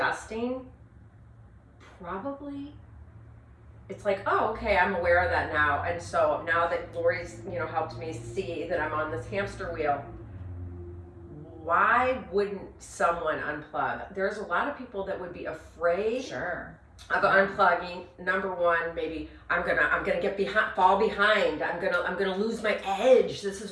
probably, it's like, oh, okay, I'm aware of that now. And so now that Lori's, helped me see that I'm on this hamster wheel, why wouldn't someone unplug? There's a lot of people that would be afraid Sure. of unplugging. Number one, maybe I'm gonna get fall behind. I'm gonna lose my edge. This is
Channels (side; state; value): both; identical; correlation 1.00